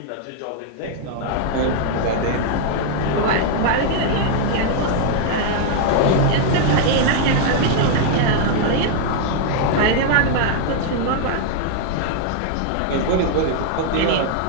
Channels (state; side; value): different; both; correlation -0.01